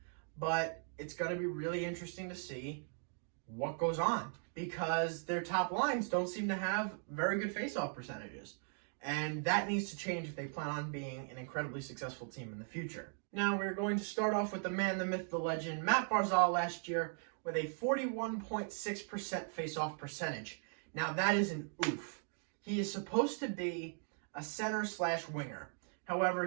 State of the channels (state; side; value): silent; left; 52 dB below the other